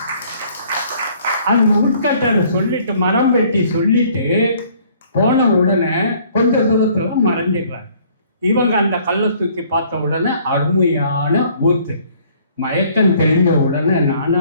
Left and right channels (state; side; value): inverted; both; correlation -0.59